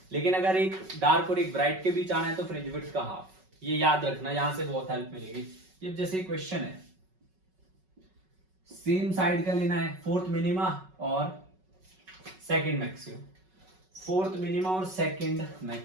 लेकिन अगर एक डार्क और एक ब्राइट के बीच आना है तो फ्रिंज विड्थ का हाफ। ये याद रखना, यहां से बहुत हेल्प मिलेगी। ये जैसे क्वेश्चन है, सेम साइड का लेना है, फोर्थ मिनिमा और सेकंड मैक्सिमा, फोर्थ मिनिमा और सेकंड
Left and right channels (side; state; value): left; late; 5.3 ms